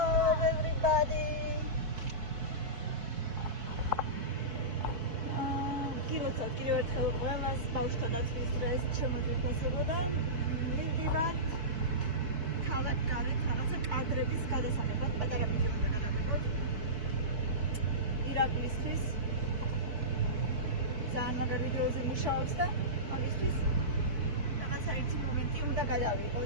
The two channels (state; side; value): late; left; 4.6 ms